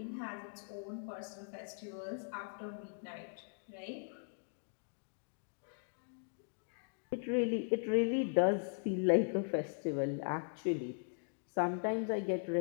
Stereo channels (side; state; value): right; silent; digital silence